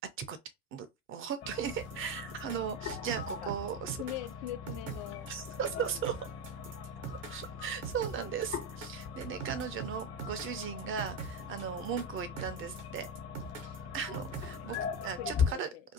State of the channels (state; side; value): normal; both; correlation 0.14